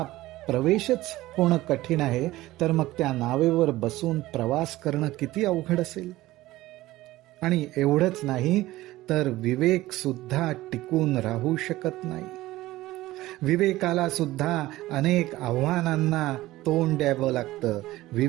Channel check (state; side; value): quieter; left; 17.1 dB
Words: प्रवेशच होणं कठीण आहे, तर मग त्या नावेवर बसून प्रवास करणं किती अवघड असेल. आणि एवढंच नाही तर विवेक सुद्धा टिकून राहू शकत नाही. विवेकाला सुद्धा अनेक आव्हानांना तोंड द्यावं लागतं.